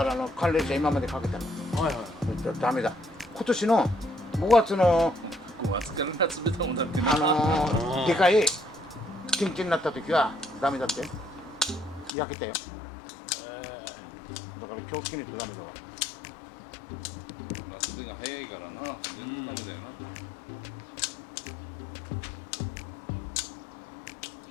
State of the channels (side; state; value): right; drops out; at 12.1 s